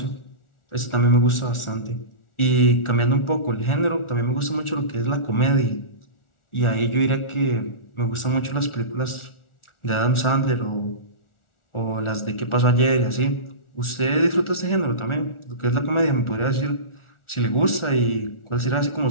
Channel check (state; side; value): late; right; 1.4 ms